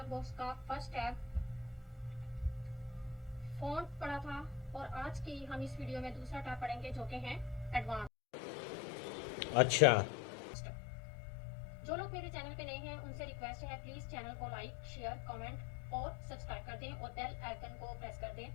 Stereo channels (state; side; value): drops out; right; at 8.1 s